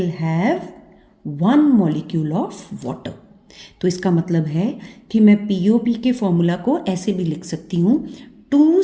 have 1 molecule of water। तो इसका मतलब है कि मैं POP के फॉर्मूला को ऐसे भी लिख सकती हूँ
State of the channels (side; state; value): both; identical; correlation 1.00